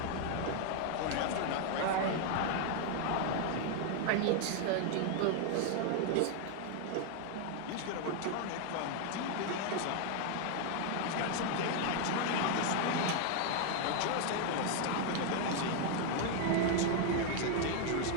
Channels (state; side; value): different; both; correlation 0.00